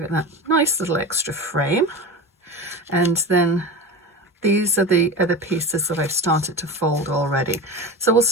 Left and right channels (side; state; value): both; normal; correlation 0.28